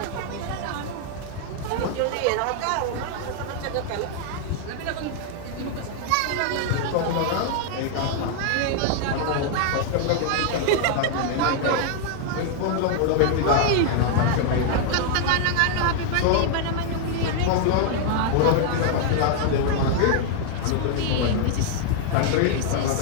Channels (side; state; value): both; different; correlation 0.00